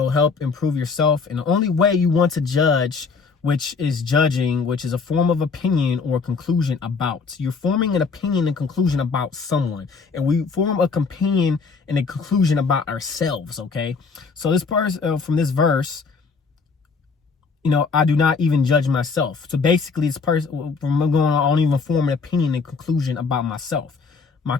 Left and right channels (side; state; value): right; quieter; 4.8 dB